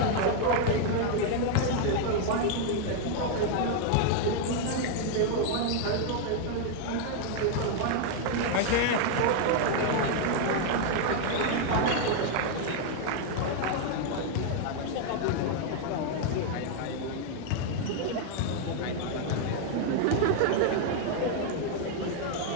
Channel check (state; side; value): different; both; correlation 0.00